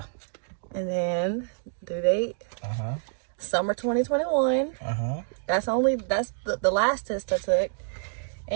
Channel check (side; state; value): left; silent; digital silence